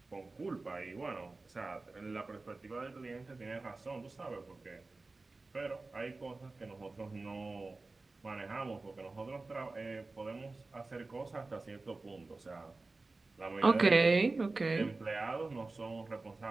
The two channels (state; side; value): quieter; left; 3.5 dB